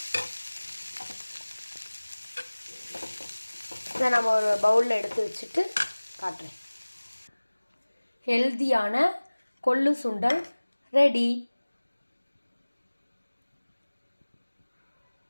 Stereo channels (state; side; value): inverted; both; correlation -1.00